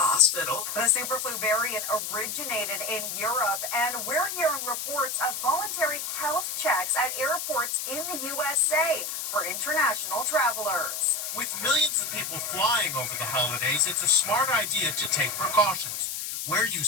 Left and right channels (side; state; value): left; noise; hiss, 4 dB below the sound